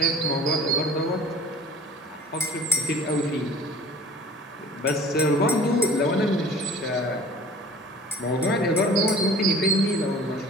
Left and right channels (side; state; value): both; normal; correlation 0.46